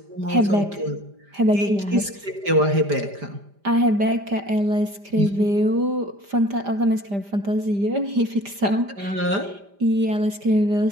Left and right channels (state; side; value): late; left; 5.0 ms